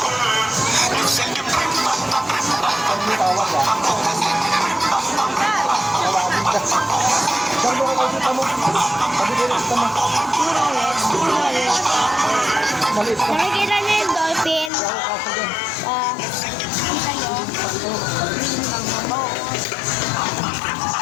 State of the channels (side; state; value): right; drops out; at 14.7 s